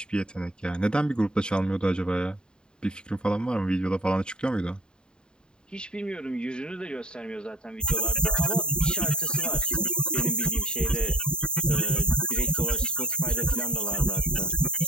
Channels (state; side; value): late; right; 0.049 ms